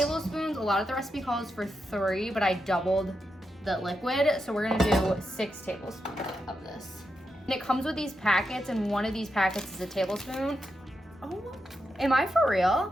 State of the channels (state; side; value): normal; both; correlation 0.86